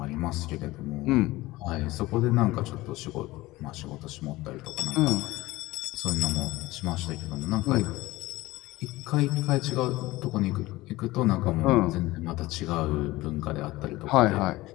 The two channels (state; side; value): quieter; right; 19.0 dB